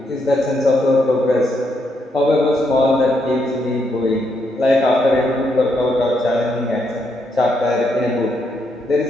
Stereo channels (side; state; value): both; normal; correlation 0.78